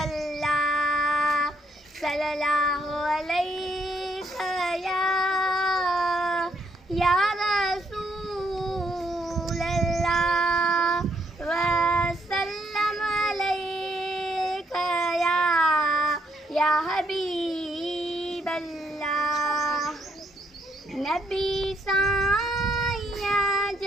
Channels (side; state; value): both; normal; correlation 0.72